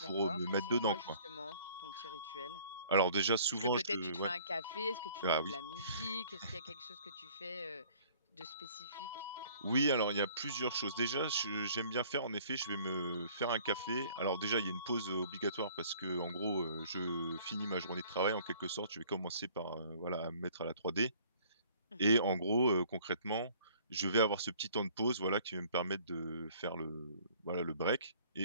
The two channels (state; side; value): inverted; both; correlation -0.55